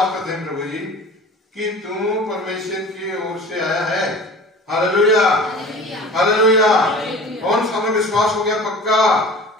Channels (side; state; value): both; normal; correlation 0.40